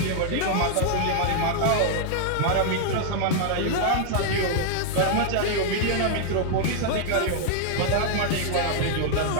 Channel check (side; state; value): both; different; correlation 0.00